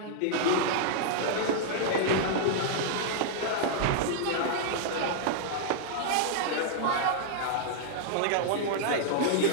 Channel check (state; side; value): different; both; correlation -0.01